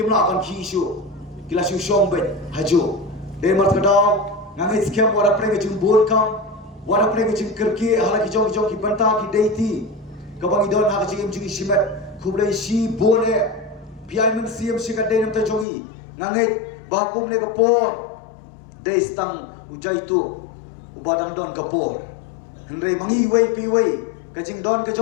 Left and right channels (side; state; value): right; drops out; at 15.7 s